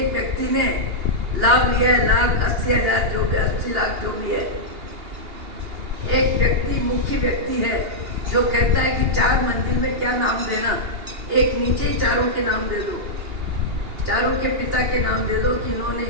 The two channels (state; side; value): late; left; 2.8 ms